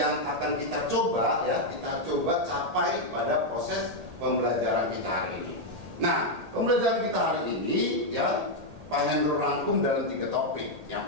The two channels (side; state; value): left; late; 1.8 ms